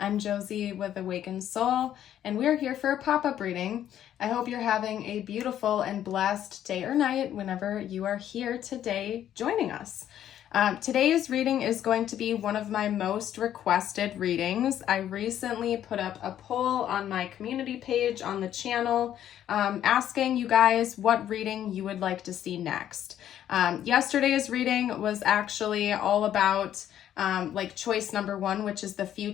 Josie with Awakened Soul, and we're here for a pop-up reading. I hope you're having a beautiful and blessed day or night whenever you are here today joining us. Today's reading is going to be one of my most requested readings. I recently put up a poll on my community page on the channel asking you guys what reading you would like to see next. Yesterday's reading was actually all about choice number one, which is the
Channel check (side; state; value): right; quieter; 10.9 dB